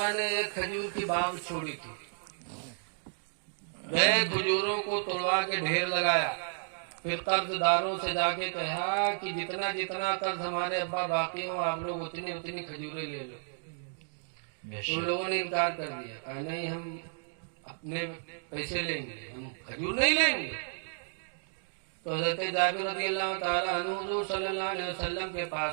نے ایک کھجور کی باغ چھوڑی تھی. گئے کھجوروں کو توڑوا کے ڈھیر لگایا. پھر قرض داروں سے جا کے کہا کہ جتنا جتنا قرض ہمارے ابا باقی ہو آپ لوگ اتنی اتنی کھجوریں لے لو. بے ان شک لوگوں نے انکار کر دیا، کہا نہیں ہم اپنے پیسے لیں گے، ہم کھجور نہیں لیں گے. تو حضرت جابر رضی اللہ تعالیٰ عنہ حضور صلی اللہ علیہ وسلم کے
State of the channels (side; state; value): left; silent; digital silence